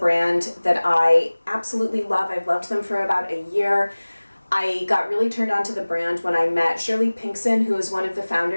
that I absolutely love. I've loved them for about a year. I got really turned on to the brand when I met Shirley Pinkson, who is one of the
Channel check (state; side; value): inverted; both; correlation -1.00